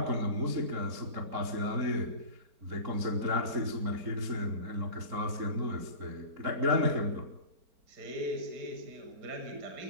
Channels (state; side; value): late; left; 4.4 ms